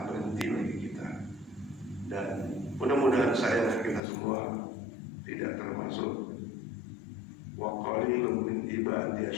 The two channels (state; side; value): drops out; right; at 4.0 s